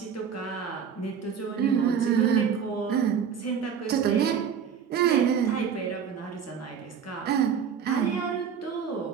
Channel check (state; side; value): quieter; left; 7.4 dB